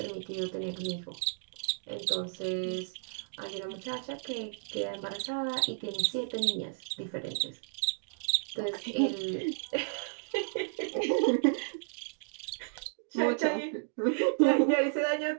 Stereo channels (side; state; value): left; silent; digital silence